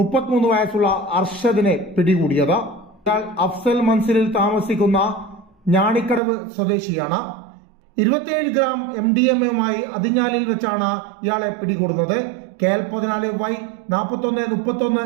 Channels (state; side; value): drops out; left; at 6.2 s